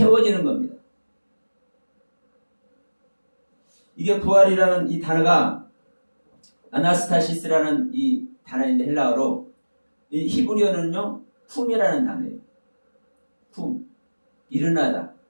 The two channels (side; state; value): both; inverted; correlation -1.00